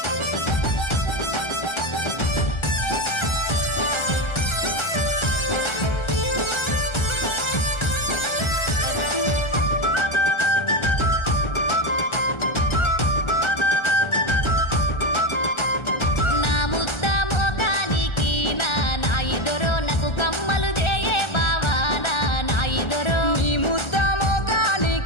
నా ముద్ద మోకానికి నా నాయి దొరో నాకు కమ్మలు దేయే బావా నా నాయి దొరో నీ ముద్ద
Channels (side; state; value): right; late; 1.3 ms